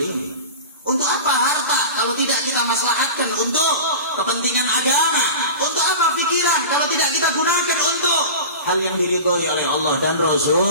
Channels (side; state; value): both; inverted; correlation -0.32